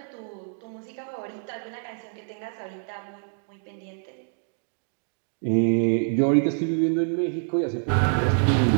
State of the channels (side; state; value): left; silent; digital silence